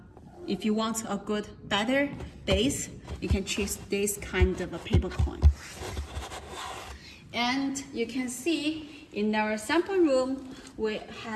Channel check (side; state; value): both; identical; correlation 1.00